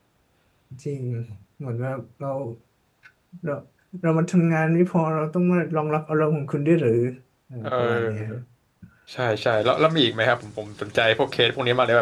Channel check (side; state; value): both; identical; correlation 1.00